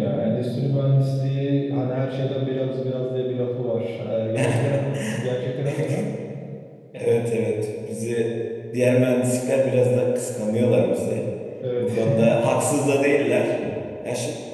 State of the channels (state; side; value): identical; both; correlation 1.00